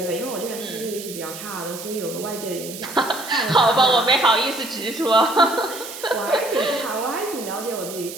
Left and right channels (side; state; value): right; noise; hiss, 11 dB below the sound